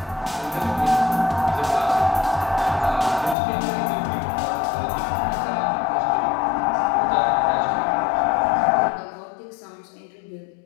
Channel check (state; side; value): drops out; right; at 3.4 s